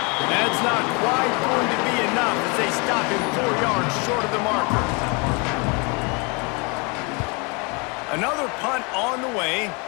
That's not quite going to be enough as they stop him 4 yards short of the marker. Another punt on the way.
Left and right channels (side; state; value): right; quieter; 31.1 dB